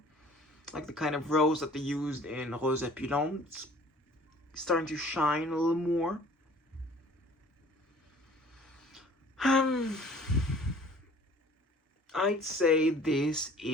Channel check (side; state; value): both; normal; correlation 0.51